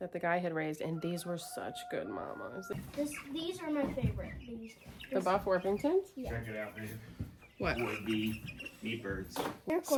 the guy had raised, and these were such good mamas. These are my favorite. The Buff Orpingtons? Yeah. Check it out, man. What? Would be meat birds. They're cool.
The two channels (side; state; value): both; identical; correlation 1.00